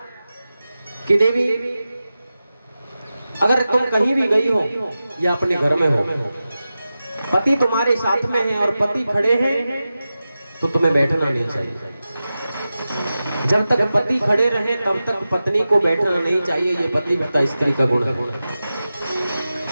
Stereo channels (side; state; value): both; inverted; correlation -0.93